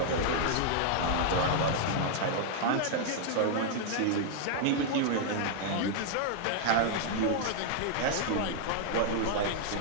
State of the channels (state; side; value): different; both; correlation -0.01